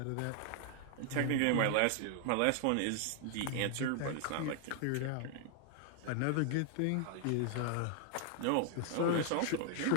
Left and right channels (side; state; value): both; different; correlation 0.00